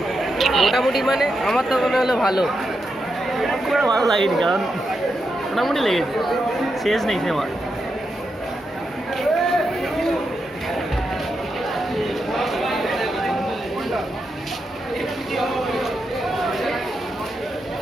মোটামুটি মানে আমার তো মনে হলো ভালো। খুব একটা ভালো লাগেনি, কারণ মোটামুটি লেগেছে, শেষ নেই সিনেমা।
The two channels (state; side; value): normal; both; correlation 0.85